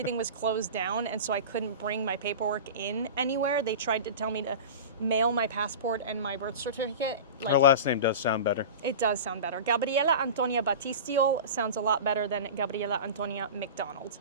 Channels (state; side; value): inverted; both; correlation -0.30